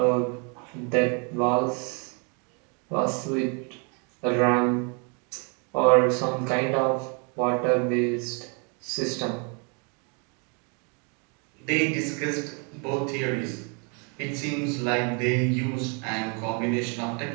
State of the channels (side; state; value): left; quieter; 35.5 dB